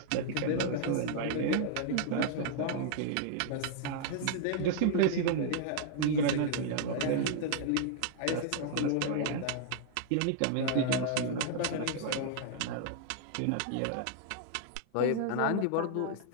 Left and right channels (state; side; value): different; both; correlation -0.01